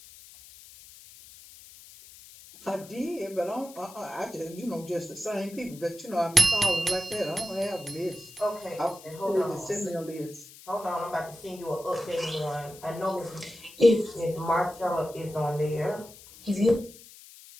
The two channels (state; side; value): noise; left; hiss, 19 dB below the sound